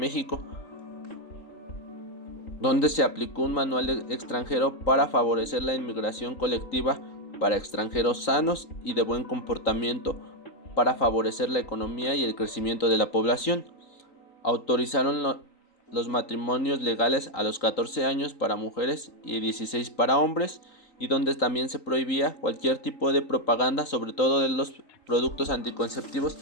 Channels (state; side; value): late; right; 3.9 ms